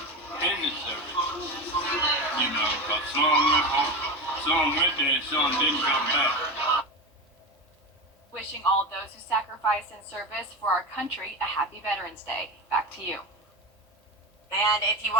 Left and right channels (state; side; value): normal; both; correlation 0.22